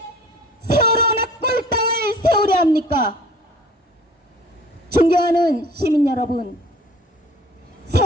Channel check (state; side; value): normal; both; correlation 0.49